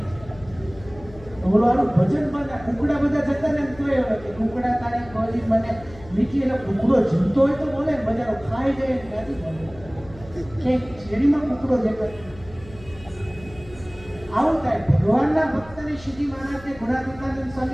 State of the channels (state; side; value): noise; left; hum, 19 dB below the sound